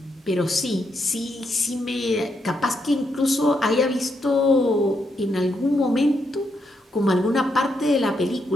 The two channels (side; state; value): both; normal; correlation 0.80